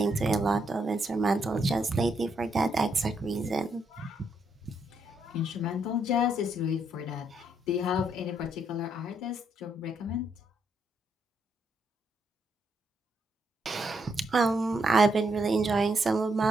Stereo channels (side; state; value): both; normal; correlation 0.76